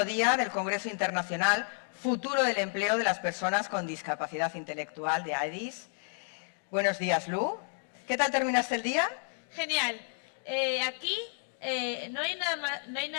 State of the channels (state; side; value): silent; right; 57 dB below the other